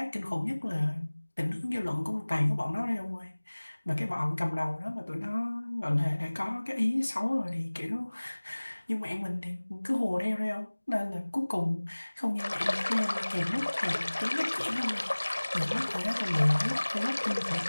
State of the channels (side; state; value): both; inverted; correlation -1.00